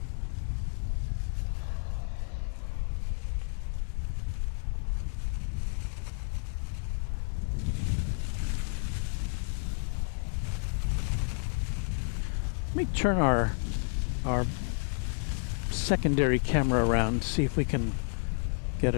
Let me turn our secondary camera around, see if we can get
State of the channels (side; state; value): right; silent; 57 dB below the other